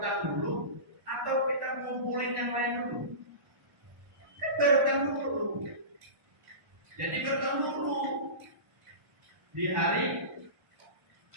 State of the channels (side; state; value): left; late; 1.1 ms